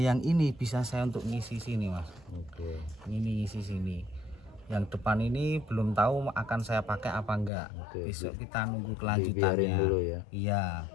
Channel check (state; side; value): drops out; right; at 7.5 s